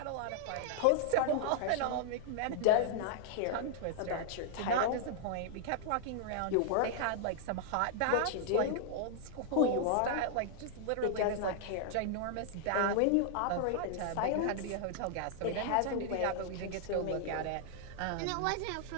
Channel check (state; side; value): different; both; correlation -0.01